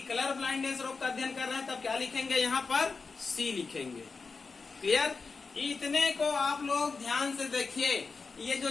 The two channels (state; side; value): quieter; right; 4.5 dB